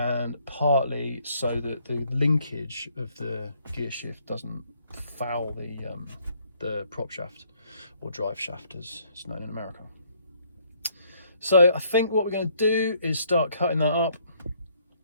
partly so that the linkage of the gear shift doesn't foul the prop shaft, or drive shaft as it's known in America. So I think what we're going to do is start cutting that up.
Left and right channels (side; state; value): both; inverted; correlation -0.67